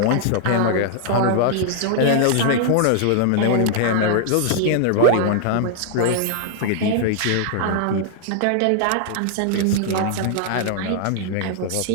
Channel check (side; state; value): both; different; correlation -0.01